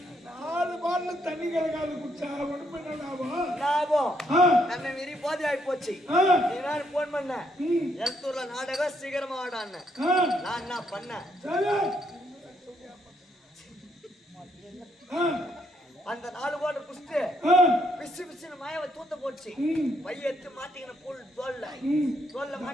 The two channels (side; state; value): both; normal; correlation 0.74